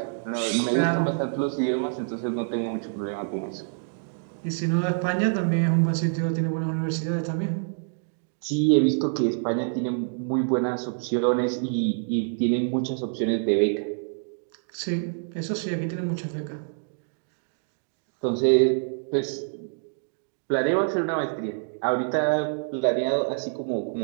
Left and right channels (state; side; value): silent; left; digital silence